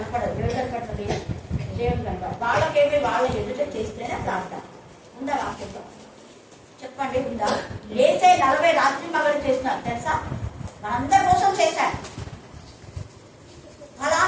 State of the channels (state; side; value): identical; both; correlation 1.00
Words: ఎవరు కనపడుతుంది? దేవుడు కనపడదు. వాళ్ళకేమి వాళ్ళ ఎదుట చేస్తేనే ప్రార్థన ఉందా? వాక్యంలో చెప్పండి ఉందా? ఏసై 40 రాత్రి మగలు చేసినారు తెలుసా? మనందరి కోసం చేశారు.